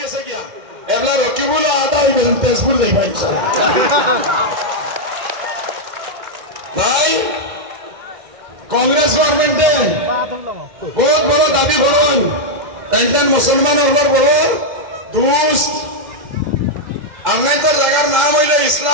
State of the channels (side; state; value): left; late; 2.1 ms